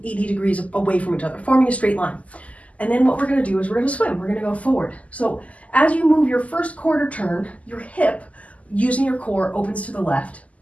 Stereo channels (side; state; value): right; late; 0.070 ms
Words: degrees away from each other, forming a straight line. And then what we're going to do is we're going to swim. We're going to go forward. So as you move your first quarter turn, your hip, using your core, opens to the left.